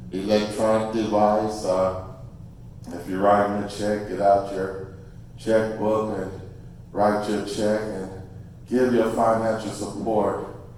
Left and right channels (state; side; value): identical; both; correlation 1.00